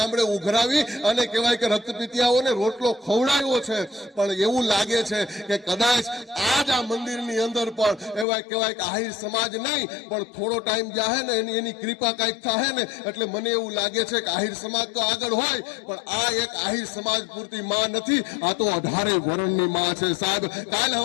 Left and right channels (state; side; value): drops out; right; at 8.2 s